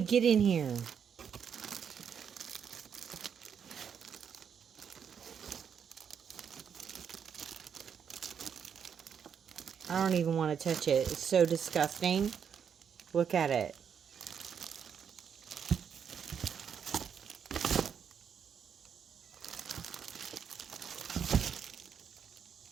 get in here? I don't even want to touch it. It's so disgusting. Look at it.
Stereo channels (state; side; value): quieter; left; 7.5 dB